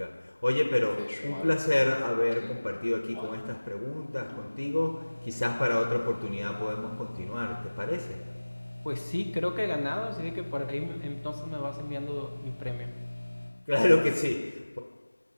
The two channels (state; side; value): inverted; both; correlation -1.00